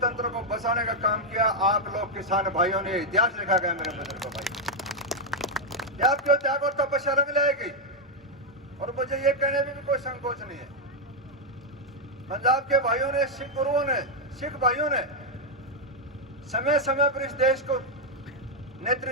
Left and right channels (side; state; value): both; normal; correlation -0.01